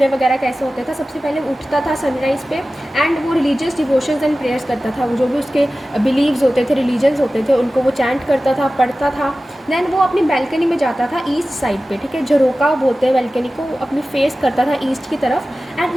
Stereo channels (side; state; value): both; normal; correlation 0.96